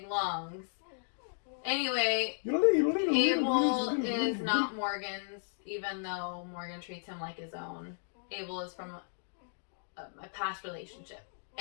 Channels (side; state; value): right; silent; digital silence